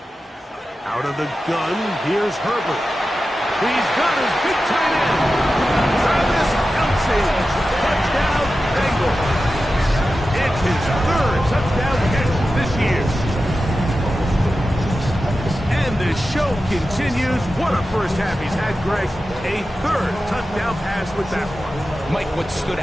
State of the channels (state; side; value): normal; both; correlation 0.93